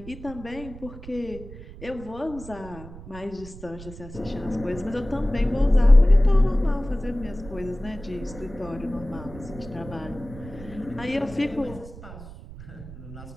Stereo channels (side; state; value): right; noise; rumble, 15 dB below the sound